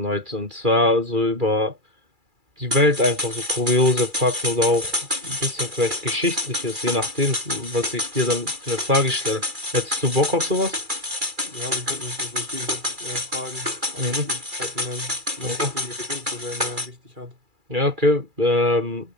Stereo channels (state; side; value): late; left; 2.3 ms